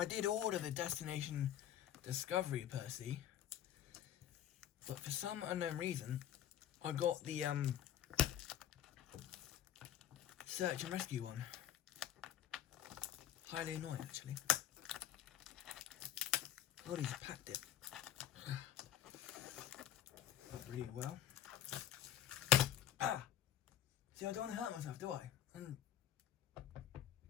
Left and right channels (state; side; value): quieter; right; 11.1 dB